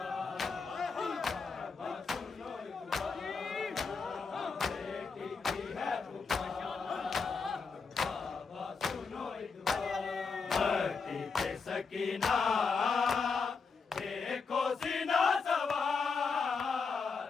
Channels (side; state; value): right; quieter; 5.0 dB